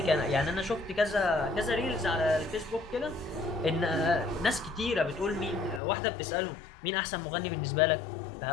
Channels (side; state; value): right; drops out; at 5.8 s